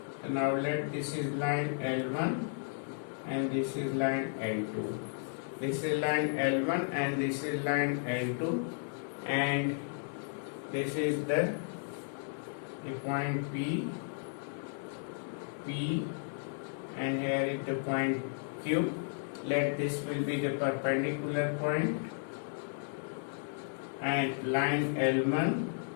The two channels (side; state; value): right; silent; digital silence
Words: So now let this is line L1 and this is line L2. This is line L1 and this is line L2, and this is the point P, and here is the point Q. Let this will be the perpendicular point, and line L1